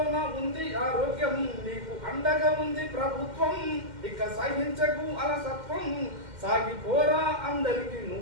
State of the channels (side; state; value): left; late; 2.1 ms